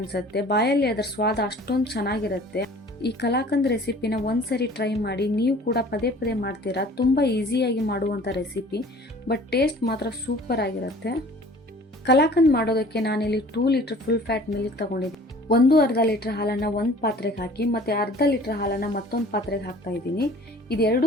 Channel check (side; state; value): both; normal; correlation 0.48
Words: ಬಾಯಲ್ಲಿ ಅದರ ಸ್ವಾದ ಅಷ್ಟೊಂದು ಚೆನ್ನಾಗಿರುತ್ತೆ. ಈ ಕಲಾಕಂದ್ ರೆಸಿಪಿನ ಒಂದ್ಸರಿ ಟ್ರೈ ಮಾಡಿ, ನೀವು ಕೂಡ ಪದೇ ಪದೇ ಮಾಡ್ತೀರಾ. ತುಂಬಾ ಈಸಿಯಾಗಿ ಮಾಡುವಂಥ ರೆಸಿಪಿ, ಬಟ್ ಟೇಸ್ಟ್ ಮಾತ್ರ ಸೂಪರ್ ಆಗಿರುತ್ತೆ. ಕಲಾಕಂದ್ ಮಾಡೋದಕ್ಕೆ ನಾನಿಲ್ಲಿ 2 ಲೀಟರ್ ಫುಲ್ ಫ್ಯಾಟ್ ಮಿಲ್ಕ್ ತಗೊಂಡಿದ್ದೀನಿ. ಅರ್ಧ ಲೀಟರ್ ಹಾಲನ್ನು ಒಂದು ಪಾತ್ರೆಗೆ ಹಾಕಿ ಮತ್ತೆ ಅರ್ಧ ಲೀಟರ್ ಹಾಲನ್ನು ಮತ್ತೊಂದು ಪಾತ್ರೆಗೆ ಹಾಕ್ತಾ ಇದ್ದೀನಿ.